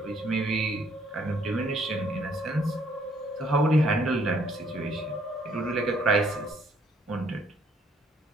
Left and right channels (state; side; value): normal; both; correlation 0.65